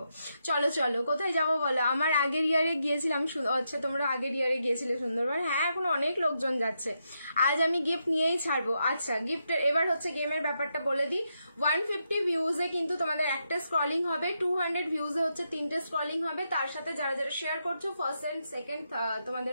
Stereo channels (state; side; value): inverted; both; correlation -0.83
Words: চলো চলো কোথায় যাবো বলো? আমার আগের ইয়ারে গিয়েছিলাম, আচ্ছা তোমরা আগের ইয়ারে গিয়েছিলে সুন্দরবন, হ্যাঁ এখন অনেক লোকজন যাচ্ছে। আজ আমি গিফট নিয়েই ছাড়বো। আচ্ছা গিফটের এবার হচ্ছে গেমের ব্যাপারটা বলে দিই। 150 ভিউজে কিন্তু তোমাদের একটা স্ক্রলিং হবে, 200 ভিউজে হচ্ছে 3টে স্ক্রলিং হবে, তার সাথে যারা যারা শেয়ার করছো ফার্স্ট এন্ড সেকেন্ড